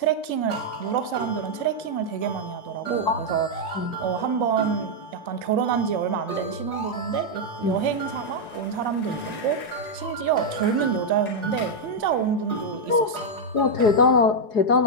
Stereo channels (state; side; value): late; right; 4.7 ms